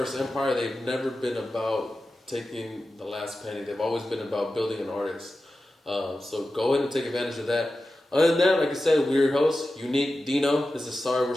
Empire, they've never been about taking the last penny. They've always been about building an artist. So go ahead and take advantage of that. Other than that, like I said, we're your host, Uneek, Deeno. This is Sorry We're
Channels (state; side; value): normal; both; correlation 0.93